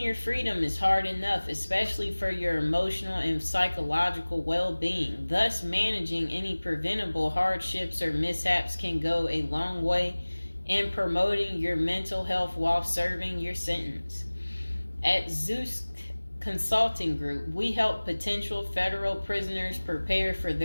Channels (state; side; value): inverted; both; correlation -1.00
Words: your freedom is hard enough, especially for your emotional and psychological well-being. Thus, managing any preventable hardships or mishaps can go a long way in promoting your mental health while serving your sentence. At Zeus Consulting Group, we help potential federal prisoners prepare for